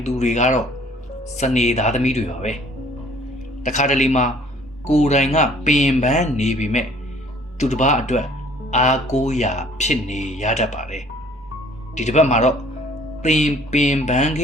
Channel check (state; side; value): normal; both; correlation 0.56